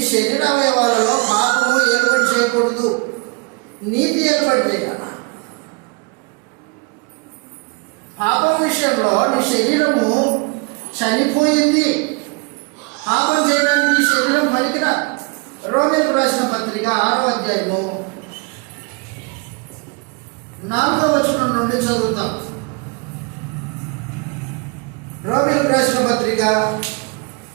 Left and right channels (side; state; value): left; quieter; 31.2 dB